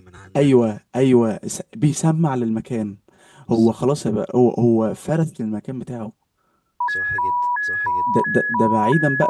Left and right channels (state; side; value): identical; both; correlation 1.00